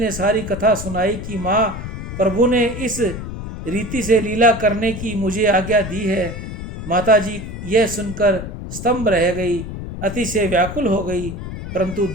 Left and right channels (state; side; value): noise; left; rumble, 8 dB below the sound